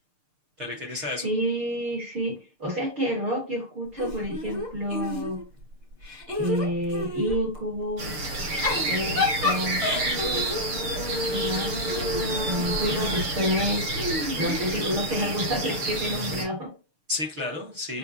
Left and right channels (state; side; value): late; left; 6.6 ms